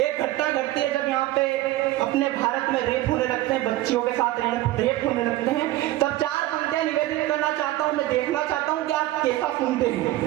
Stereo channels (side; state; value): left; quieter; 16.2 dB